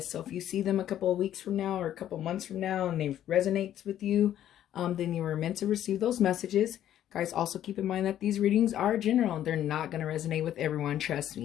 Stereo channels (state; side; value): quieter; right; 11.4 dB